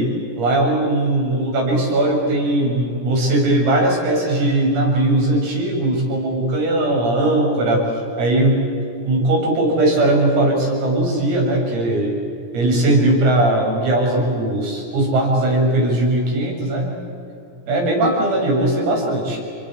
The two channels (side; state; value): left; late; 17 ms